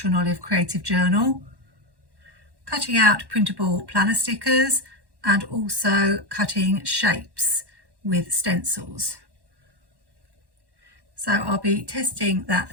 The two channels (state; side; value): late; left; 1.1 ms